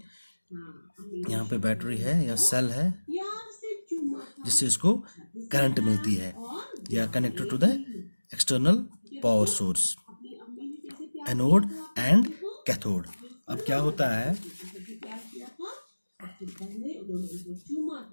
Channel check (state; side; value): inverted; both; correlation -1.00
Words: यहाँ पे बैटरी है या सेल है, जिससे इसको करंट मिलती है. They are connected to the external power source. Anode and cathode. अब क्या होता है?